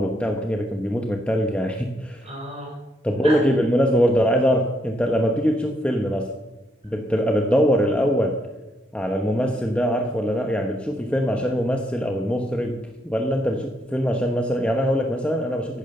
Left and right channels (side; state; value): both; normal; correlation 0.75